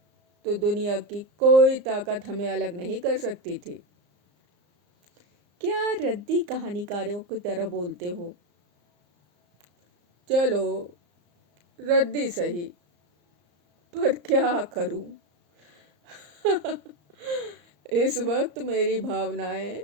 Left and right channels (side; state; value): left; late; 34 ms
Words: तो दुनिया की कोई ताकत हमें अलग नहीं कर सकती थी। क्या रद्दी कहानीकारों की तरह बोलते हो? चलो रद्दी सही, पर क्या करूं? इस वक्त मेरी भावनाएं